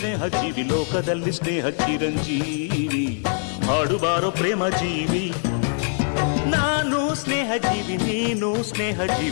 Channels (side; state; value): right; silent; digital silence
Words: ಜೀವಿ, ಲೋಕದಲ್ಲಿ ಸ್ನೇಹ ಚಿರಂಜೀವಿ. ಹಾಡುಬಾರೋ ಪ್ರೇಮ ಜೀವಿ. ನಾನು ಸ್ನೇಹ ಜೀವಿ, ನೀನು ಸ್ನೇಹ